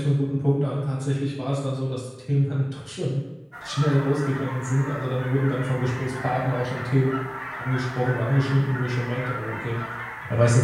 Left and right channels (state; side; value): identical; both; correlation 1.00